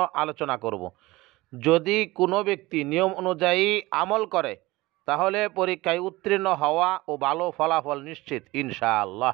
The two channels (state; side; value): quieter; left; 20.3 dB